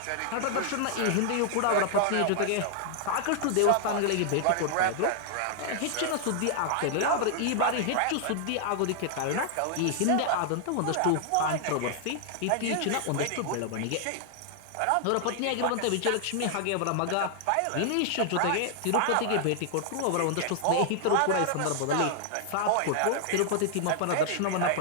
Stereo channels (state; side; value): different; both; correlation -0.01